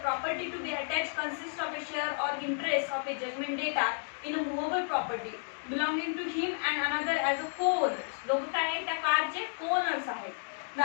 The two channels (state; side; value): silent; right; digital silence